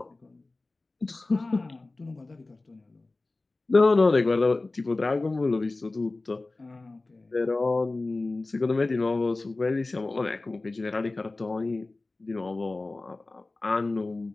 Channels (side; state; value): right; quieter; 3.2 dB